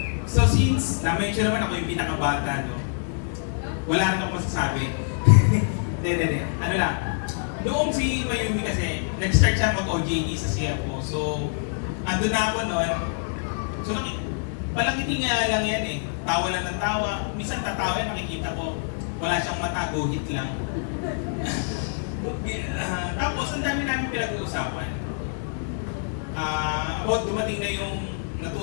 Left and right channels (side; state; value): right; silent; 61 dB below the other